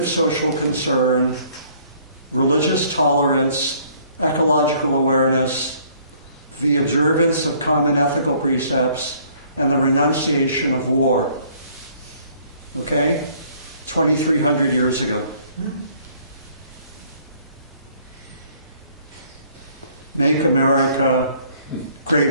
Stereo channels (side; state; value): both; inverted; correlation -0.60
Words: social concern, religious tolerance, ecological awareness, the observance of common ethical precepts, and the renunciation of war. Okay? 2,300 years ago. Make America